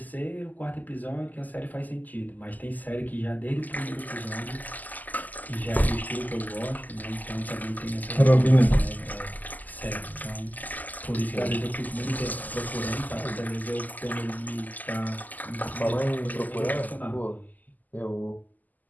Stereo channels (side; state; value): right; late; 0.082 ms